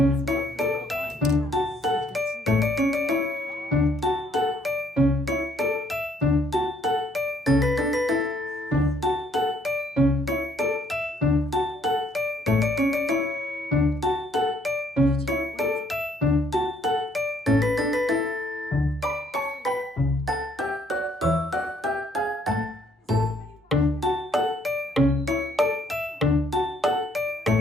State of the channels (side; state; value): both; normal; correlation 0.67